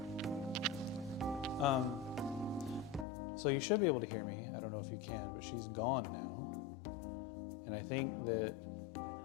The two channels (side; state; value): right; drops out; at 3.1 s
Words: So you should be able to hear me. I don't know if you can, but she's gone now. And I think that but